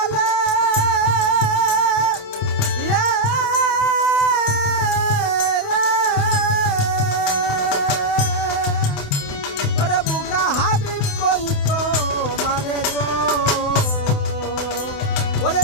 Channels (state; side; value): late; right; 28 ms